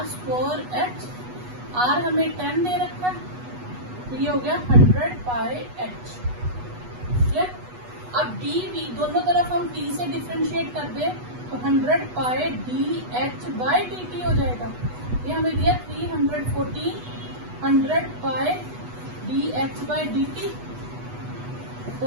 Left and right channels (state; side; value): late; left; 8.2 ms